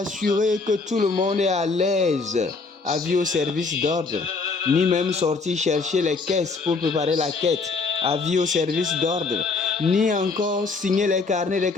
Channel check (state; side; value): quieter; right; 4.2 dB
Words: que tout le monde est à l'aise, avis au service d'ordre, ni même sortir chercher les caisses pour préparer la quête, avis au service d'ordre, ni encore signer les carnets des